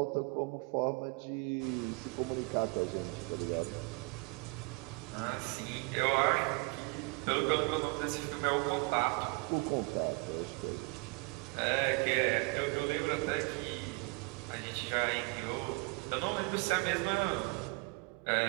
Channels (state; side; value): quieter; left; 28.1 dB